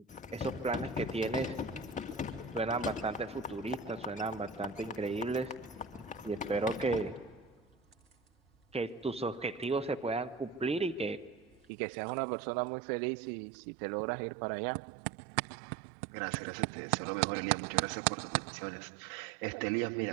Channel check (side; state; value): left; drops out; at 11.6 s